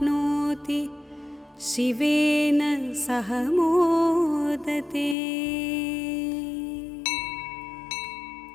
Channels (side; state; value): right; drops out; at 5.2 s